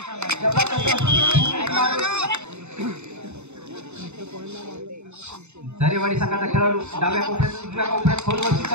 झरेवाडी संघाचा खेळाडू डाव्या कोपऱ्यात उजव्या कोपऱ्यात खोलवरची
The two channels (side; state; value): left; late; 0.82 ms